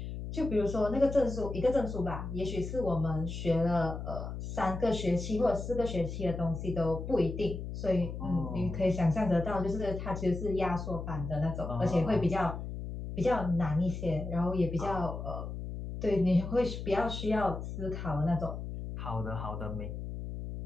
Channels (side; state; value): left; noise; hum, 7 dB below the sound